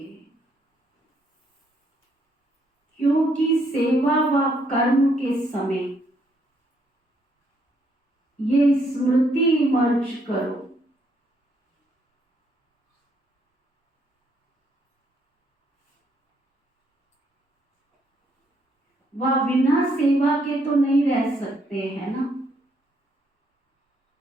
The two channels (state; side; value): normal; both; correlation 0.72